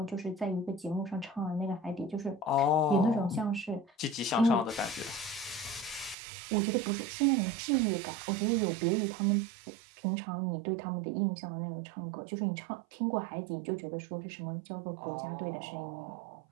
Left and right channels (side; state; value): left; drops out; at 6.2 s